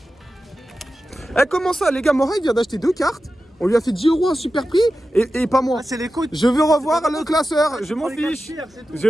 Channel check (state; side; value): normal; both; correlation 0.93